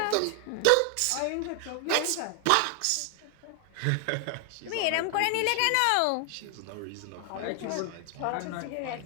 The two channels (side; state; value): both; different; correlation 0.00